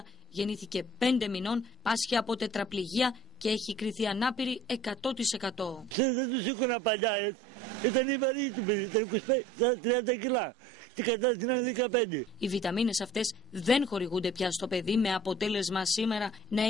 γεννήθηκε 5 μηνών, πάσχει από τετραπληγία και έχει κριθεί ανάπηρη 100%. Δεν τους σήκωνα παλιά, ήταν η βαρύ του παιδί, ήταν 30 κιλά. Τι κατάσταση είναι 15. Οι βιταμίνες αυτές δεν χορηγούνται πια στο παιδί, με αποτέλεσμα σήμερα να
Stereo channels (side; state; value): both; normal; correlation 0.49